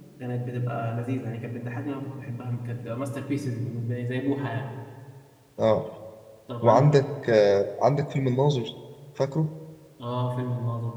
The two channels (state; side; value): identical; both; correlation 1.00